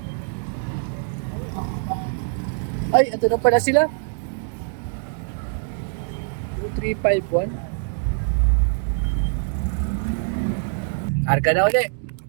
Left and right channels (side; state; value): left; silent; 63 dB below the other